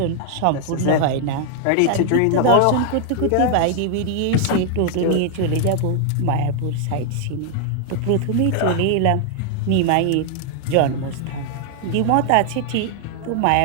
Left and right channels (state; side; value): different; both; correlation 0.00